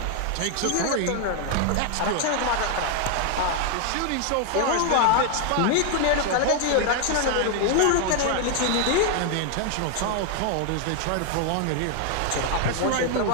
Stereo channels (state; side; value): different; both; correlation 0.00